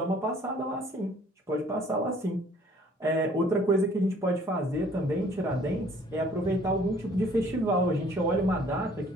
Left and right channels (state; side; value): normal; both; correlation 0.57